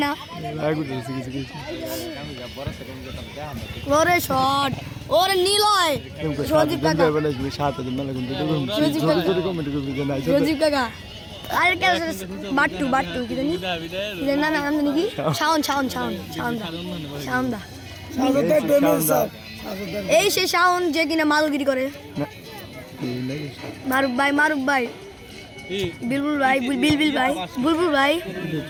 না ওরে শট ওরে নিলয় সজীব কাকা সজীব কাকা আরে কে বাট্টু কি জানি না নাম জানি কি শাওন দা এই সে শাওন যে কিনা মালগিরি করে মারুফ ভাই বুলবুল ভাই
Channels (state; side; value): identical; both; correlation 1.00